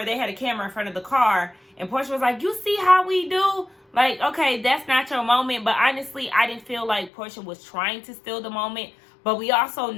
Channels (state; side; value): drops out; right; at 7.1 s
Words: they had a camera in front of the car, and Porsha was like, you see how we do? Like, okay, that's not your moment. But honestly, I didn't feel like Porsha was trying to steal the moment. But we also